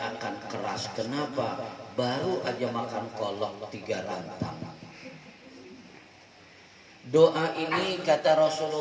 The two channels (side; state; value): both; identical; correlation 1.00